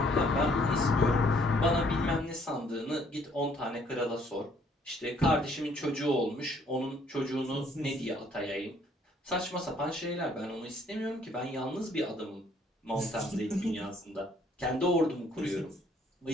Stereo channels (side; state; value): both; normal; correlation 0.63